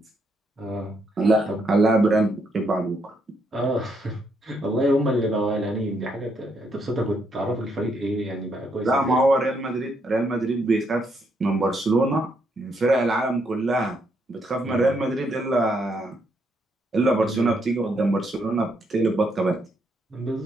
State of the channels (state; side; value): normal; both; correlation 0.75